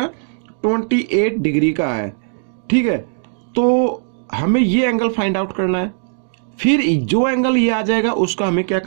28 डिग्री का है। ठीक है, तो हमें ये एंगल फाइंड आउट करना है, फिर जो एंगल ये आ जाएगा उसका हमें क्या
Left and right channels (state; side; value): silent; left; digital silence